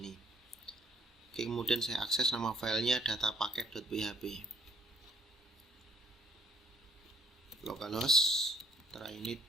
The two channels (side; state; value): both; normal; correlation 0.64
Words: Oke, kemudian saya akses nama filenya datapaket.php. Localhost trainit